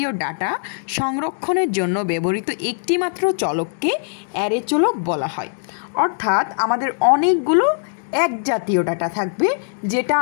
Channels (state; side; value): silent; right; digital silence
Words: ডাটা সংরক্ষণের জন্য ব্যবহৃত একটিমাত্র চলককে অ্যারে চলক বলা হয়। অর্থাৎ আমাদের অনেকগুলো এক জাতীয় ডাটা থাকবে যেটা